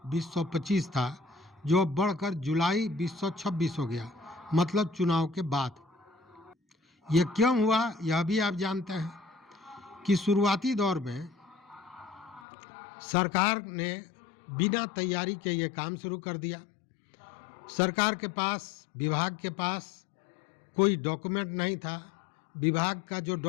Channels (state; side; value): drops out; right; at 12.5 s